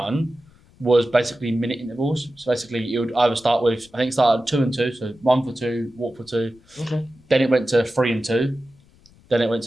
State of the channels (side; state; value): left; noise; rumble, 28 dB below the sound